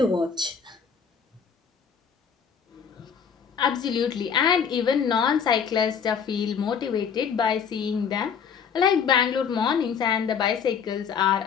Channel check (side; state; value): right; quieter; 6.9 dB